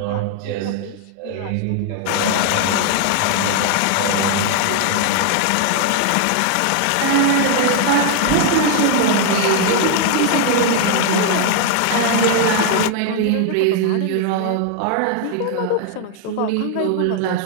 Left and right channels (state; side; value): different; both; correlation 0.00